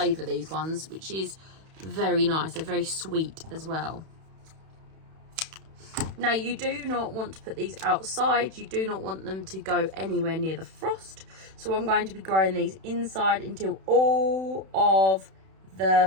these ones, which is very nice. They're very sweet as well. Now, you do not want to put these outside. You do not want them to go anywhere near the frost. So I'm going to be growing these inside until all of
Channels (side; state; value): left; late; 31 ms